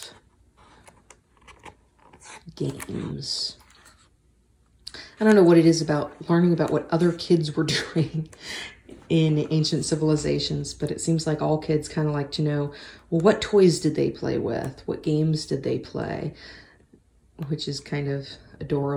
games. I don't know what it is about learning about what other kids were doing in ancient civilizations, but it seems like all kids kind of like to know, well, what toys did they play with? What games did they play? Which is kind of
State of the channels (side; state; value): both; identical; correlation 1.00